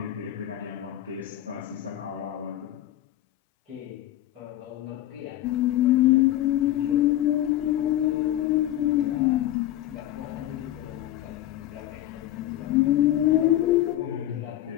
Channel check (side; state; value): right; quieter; 13.5 dB